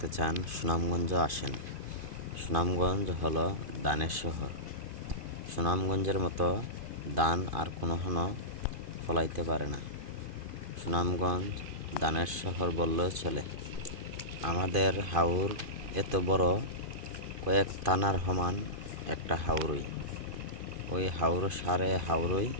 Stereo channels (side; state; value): left; late; 2.5 ms